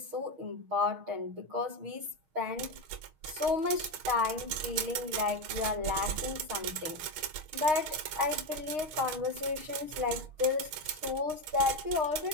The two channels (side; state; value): left; late; 6.5 ms